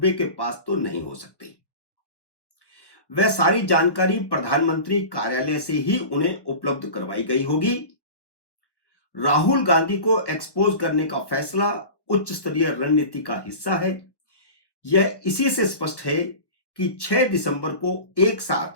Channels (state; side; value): late; right; 1.1 ms